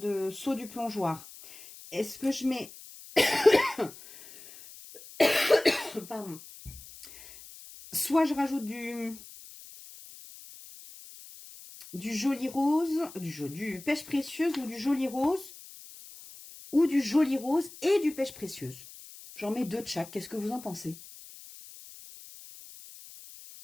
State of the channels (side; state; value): left; noise; hiss, 17 dB below the sound